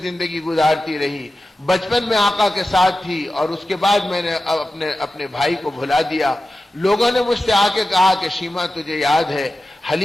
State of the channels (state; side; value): normal; both; correlation 0.94